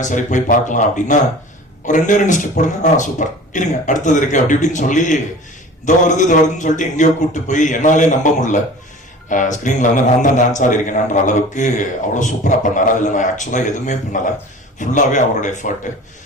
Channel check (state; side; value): normal; both; correlation 0.41